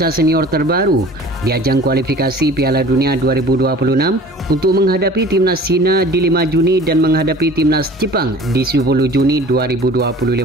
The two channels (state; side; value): normal; both; correlation 0.45